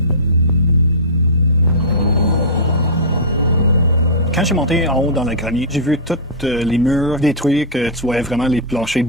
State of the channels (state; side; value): normal; both; correlation -0.15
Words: Quand j'ai monté en haut dans le grenier, j'ai vu tous les murs détruits, que tu voyais vraiment les planchers de